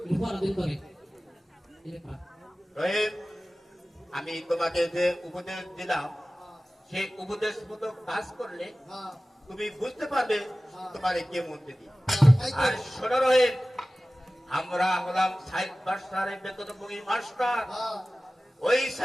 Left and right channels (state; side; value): normal; both; correlation 0.97